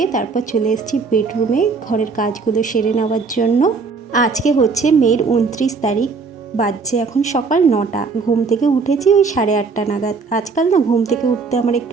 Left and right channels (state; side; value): quieter; left; 4.7 dB